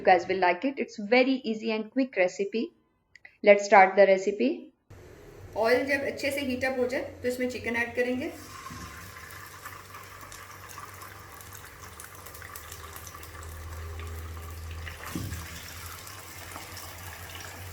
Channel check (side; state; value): both; identical; correlation 1.00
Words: guys will like it. It's very easy and quick recipe. Let's start the recipe. Oil जब अच्छे से हीट अप हो जाए तो इसमें चिकन ऐड करेंगे।